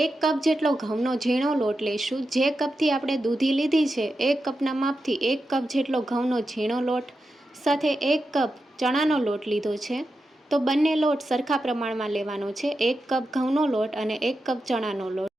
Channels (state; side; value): normal; both; correlation 0.89